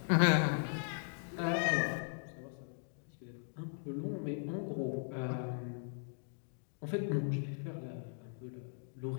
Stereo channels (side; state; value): right; silent; digital silence